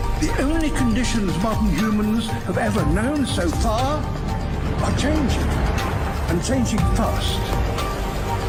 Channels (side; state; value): both; identical; correlation 1.00